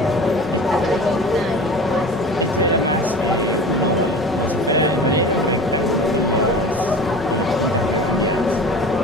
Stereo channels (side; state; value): both; normal; correlation 0.37